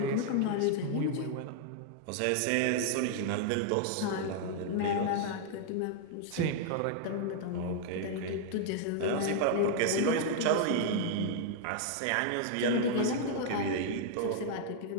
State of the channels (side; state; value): both; different; correlation 0.00